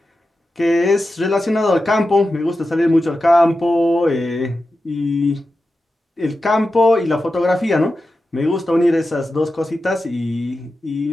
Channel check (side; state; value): both; normal; correlation 0.92